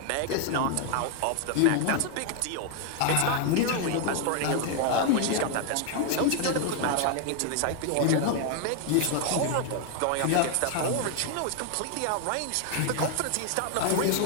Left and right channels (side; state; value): both; different; correlation 0.00